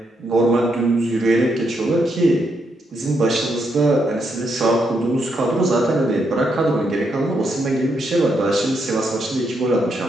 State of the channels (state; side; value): normal; both; correlation 0.79